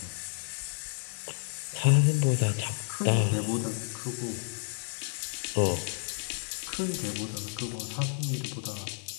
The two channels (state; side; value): silent; right; 57 dB below the other